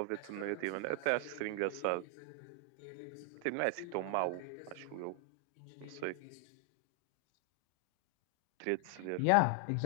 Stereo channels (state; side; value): different; both; correlation 0.00